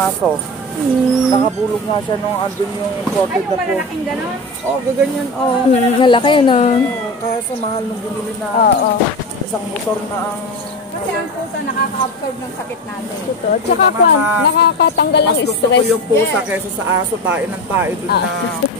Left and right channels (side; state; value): both; normal; correlation 0.24